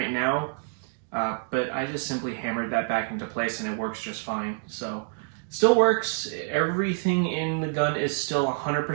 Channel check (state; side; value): silent; left; digital silence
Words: now, but I just simply hammered that back into place and it works just fine. So still works. Everything in the gun is still